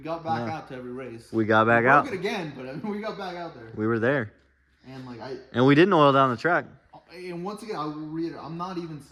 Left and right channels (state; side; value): identical; both; correlation 1.00